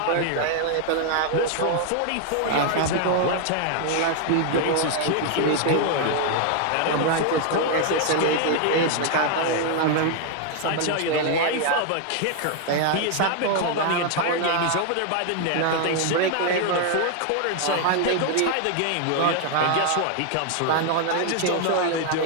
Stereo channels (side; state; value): both; different; correlation 0.00